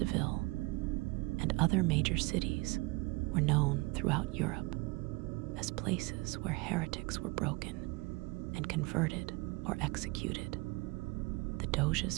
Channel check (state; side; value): quieter; left; 24.7 dB